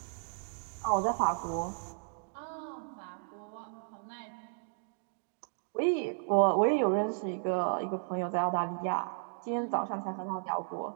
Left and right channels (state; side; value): silent; left; digital silence